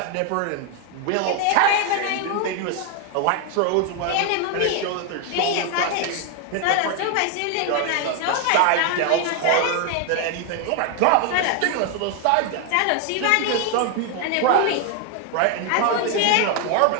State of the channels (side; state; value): both; different; correlation 0.01